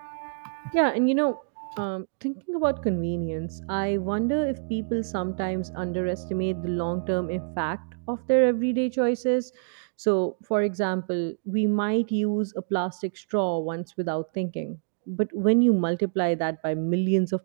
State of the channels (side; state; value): left; silent; digital silence